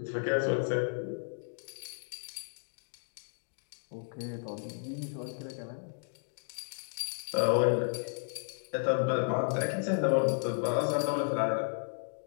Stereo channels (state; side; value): silent; right; digital silence